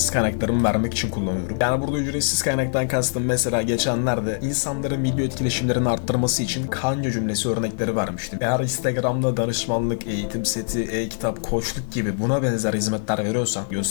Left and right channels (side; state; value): right; silent; digital silence